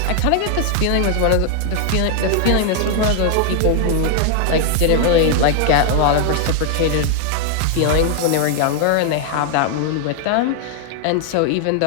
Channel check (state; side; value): different; both; correlation 0.00